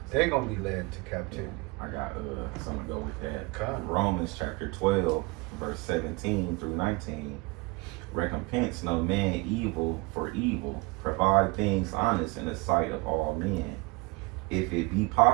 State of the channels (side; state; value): left; quieter; 25.2 dB